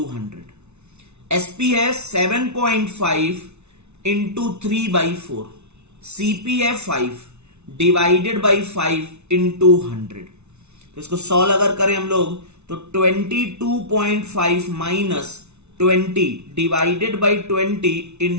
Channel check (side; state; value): left; late; 0.81 ms